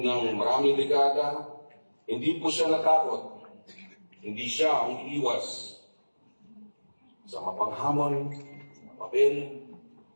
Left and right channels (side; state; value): both; inverted; correlation -1.00